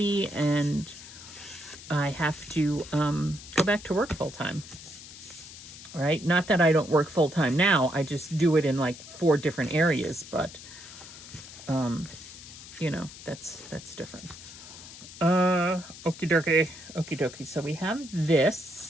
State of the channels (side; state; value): left; noise; hiss, 15 dB below the sound